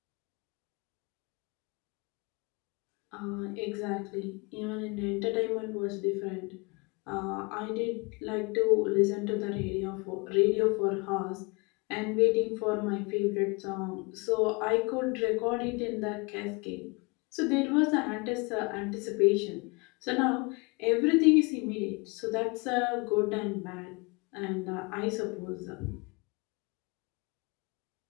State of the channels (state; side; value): quieter; right; 28.9 dB